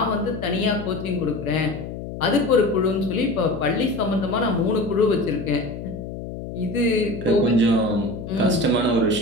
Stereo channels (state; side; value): noise; left; hum, 9 dB below the sound